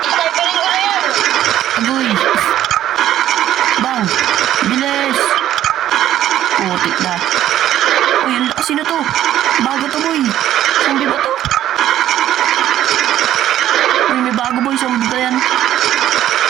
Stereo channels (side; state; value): left; quieter; 12.2 dB